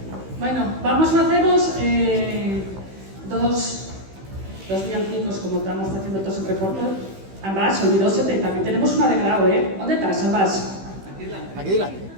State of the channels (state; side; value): late; left; 16 ms